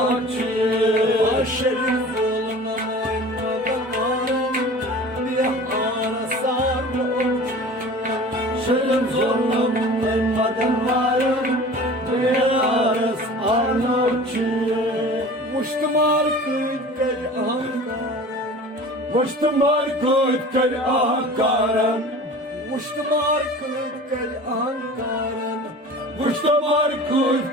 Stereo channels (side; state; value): both; normal; correlation 0.40